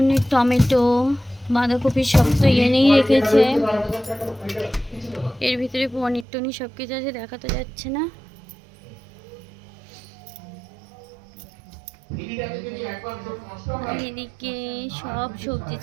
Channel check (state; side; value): drops out; left; at 6.2 s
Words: টমেটো, বাঁধাকপি সব তো এনেই রেখেছে। এর ভিতরে পনির টনির সব কিছু আছে, দেখা তো যাচ্ছে না। আর এদিকে সব সবজি